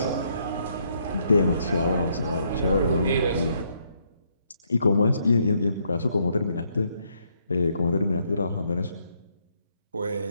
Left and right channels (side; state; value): both; inverted; correlation -0.73